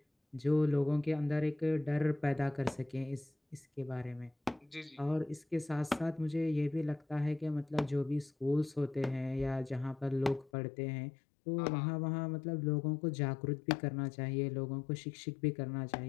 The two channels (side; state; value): right; drops out; at 10.5 s